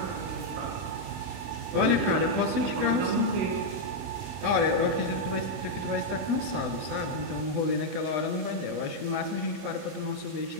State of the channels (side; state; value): left; late; 20 ms